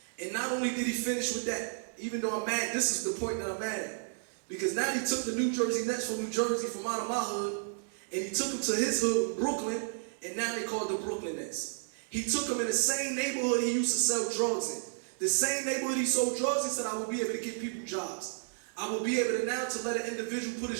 And not only did he finish with that, even though I'm mad, this is the point that I'm mad at. Because now he took the New Jersey Nets from New Jersey, from out of my hood, and he took them to his hood, Brooklyn, and now they call it the Brooklyn Nets. He took them in the same neighborhood he used to sell drugs in. The same neighborhood he sold drugs, he said, I will be able to give people jobs. I will be able to now to let an individual put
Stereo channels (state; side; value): silent; left; digital silence